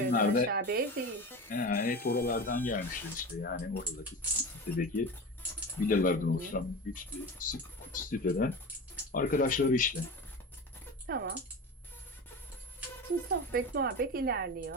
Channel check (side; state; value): both; normal; correlation 0.28